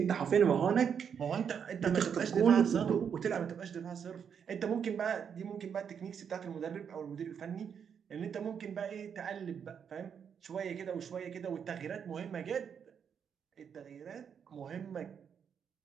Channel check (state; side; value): quieter; left; 7.4 dB